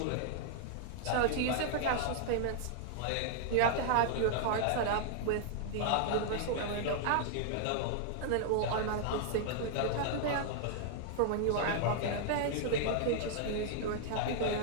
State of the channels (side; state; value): both; different; correlation -0.01